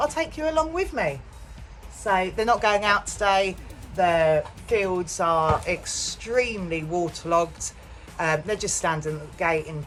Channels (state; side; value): identical; both; correlation 1.00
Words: I'd take you along with me. So they're not going out today. The fields are extremely waterlogged. They're just standing at the gate in